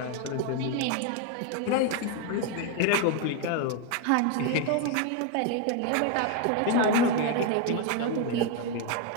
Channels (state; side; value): different; both; correlation 0.01